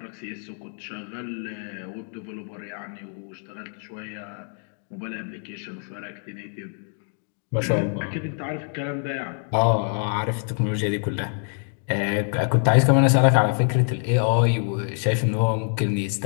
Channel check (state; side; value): silent; right; 55 dB below the other